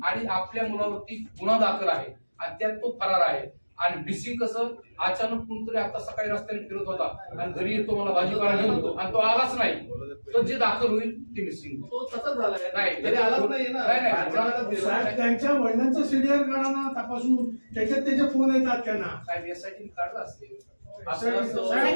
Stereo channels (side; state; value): both; inverted; correlation -1.00